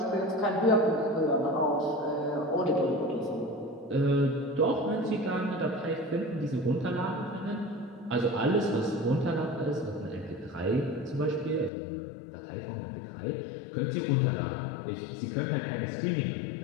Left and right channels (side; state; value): right; drops out; at 11.7 s